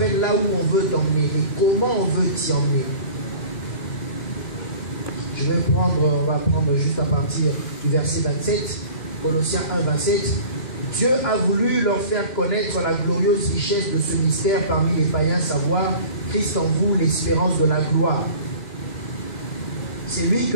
là où on veut t'emmener et comment on veut t'y emmener. On va prendre juste à partir du verset 27, Colossiens 1, 27. Dieu a voulu leur faire connaître la glorieuse richesse de ce mystère parmi les païens, savoir Christ en vous, l'espérance de la gloire. C'est lui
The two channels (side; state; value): right; late; 2.9 ms